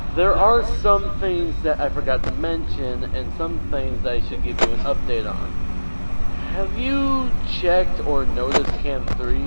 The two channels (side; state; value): both; inverted; correlation -1.00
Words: There are some things that I forgot to mention, and some things I should give you an update on. Have you checked or noticed Cam 3